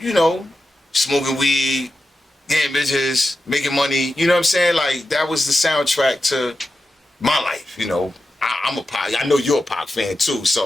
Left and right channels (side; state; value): both; normal; correlation 0.91